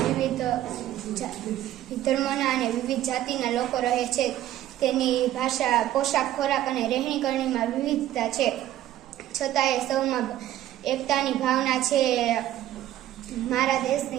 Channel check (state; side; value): quieter; left; 13.3 dB